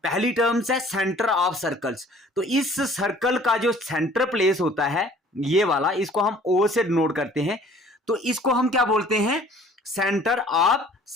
पहली टर्म्स है, सेंटर ऑफ सर्कल्स। तो इस सर्कल का जो सेंटर प्लेस होता है ये वाला, इसको हम ओ से डिनोट करते हैं। तो इसको हम क्या बोलते हैं, सेंटर ऑफ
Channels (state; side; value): normal; both; correlation 0.53